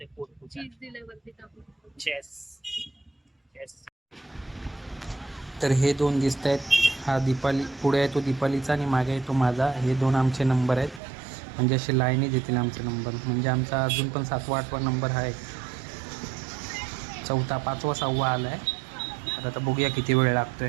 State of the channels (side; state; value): left; drops out; at 11.0 s